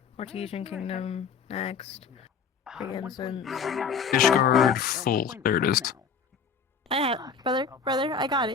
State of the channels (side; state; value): right; quieter; 6.0 dB